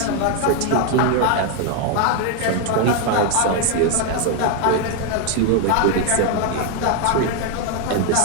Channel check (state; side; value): different; both; correlation 0.01